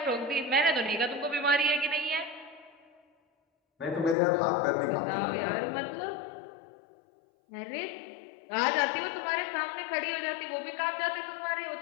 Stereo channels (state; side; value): drops out; right; at 4.2 s